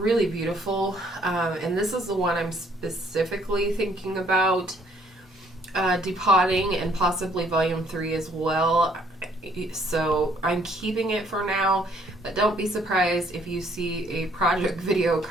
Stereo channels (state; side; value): normal; both; correlation 0.64